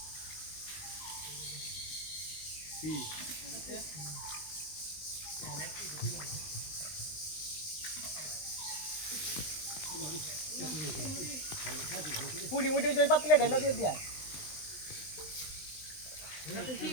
কি পুড়ি উঠে ওই পাতিলে ঢেলা দিয়ে দিয়া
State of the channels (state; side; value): late; right; 20 ms